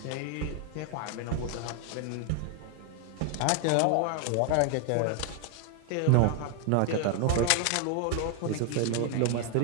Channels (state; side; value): different; both; correlation 0.00